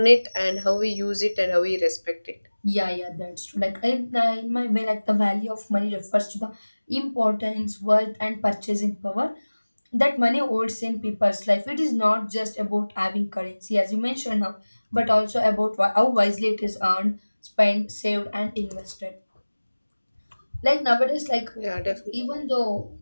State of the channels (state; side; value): inverted; both; correlation -1.00